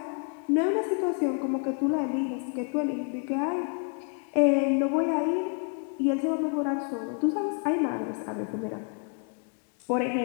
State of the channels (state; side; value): quieter; right; 39.7 dB